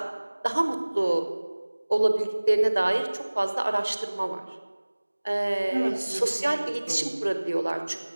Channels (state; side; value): inverted; both; correlation -1.00